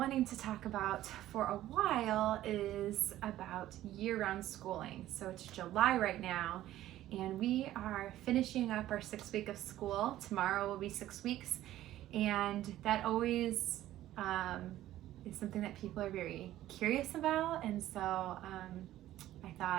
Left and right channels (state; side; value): quieter; left; 13.9 dB